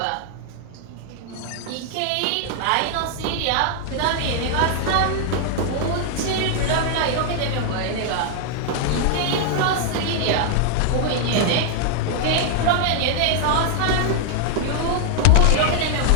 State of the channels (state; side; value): different; both; correlation 0.00